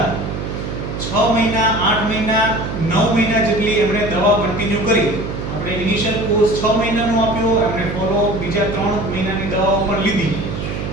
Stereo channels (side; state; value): right; noise; hum, 5 dB below the sound